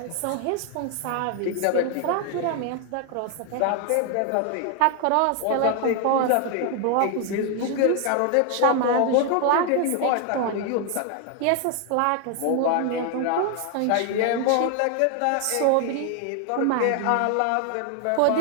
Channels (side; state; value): both; different; correlation 0.00